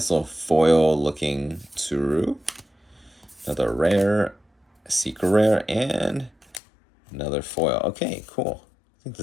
little foil looking Tsuru. Another rare. Secret rare. And another foil. Okay, cool. I think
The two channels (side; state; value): right; drops out; at 6.6 s